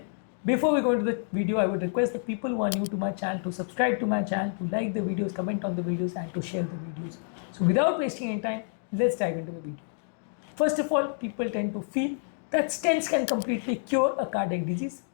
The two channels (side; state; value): right; silent; digital silence